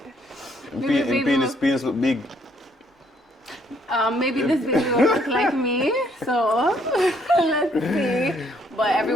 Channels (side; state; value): both; normal; correlation 0.68